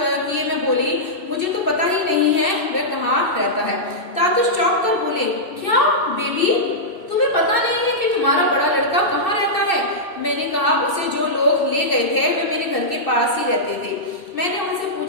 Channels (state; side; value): late; right; 2.6 ms